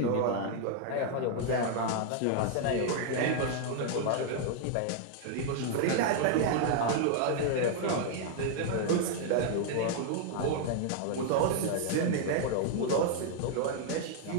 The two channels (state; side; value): different; both; correlation 0.00